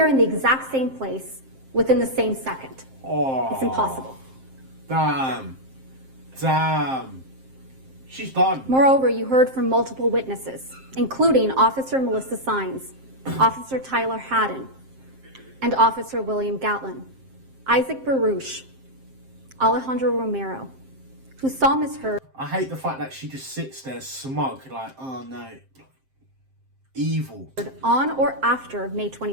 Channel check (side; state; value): left; late; 7.6 ms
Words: in the exact same place within the same second. Oh, It's impossible. Damn. She's done. Moreover, you heard from multiple witnesses, including Officer Melissa Sines, Officer Tyler Haddon, and Officer William Gatlin, Isaac Baruch, Alejandro Romero, who saw Ms. Heard. I hate the fact that she just sits there smug, like, oh no, evil. On or after May